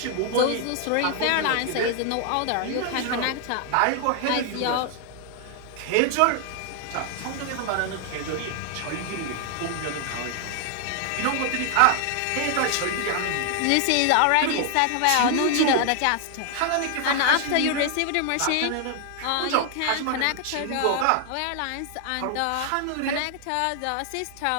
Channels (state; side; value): different; both; correlation 0.00